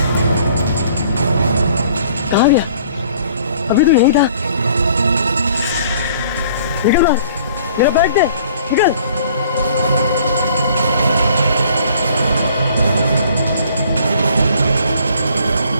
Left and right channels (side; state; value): both; inverted; correlation -0.56